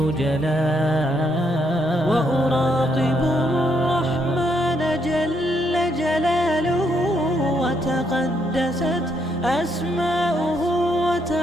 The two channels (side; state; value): both; normal; correlation 0.75